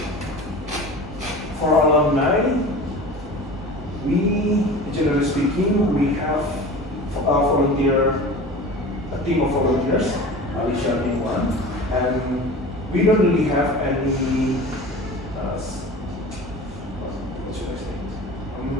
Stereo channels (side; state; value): both; normal; correlation 0.36